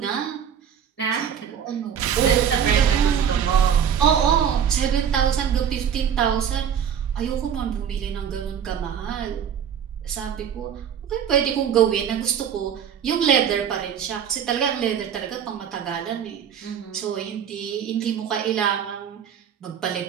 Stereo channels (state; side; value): quieter; left; 8.4 dB